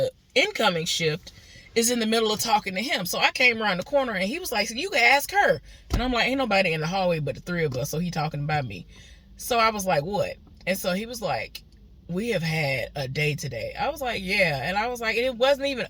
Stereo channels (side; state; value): both; identical; correlation 1.00